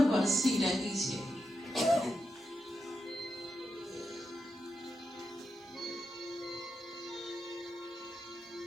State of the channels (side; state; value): both; normal; correlation 0.86